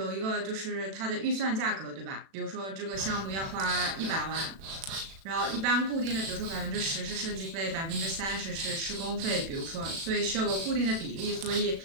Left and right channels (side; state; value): left; late; 36 ms